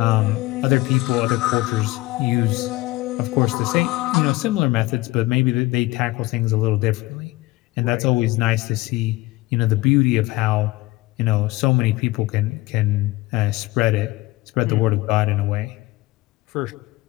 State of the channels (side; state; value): right; quieter; 19.9 dB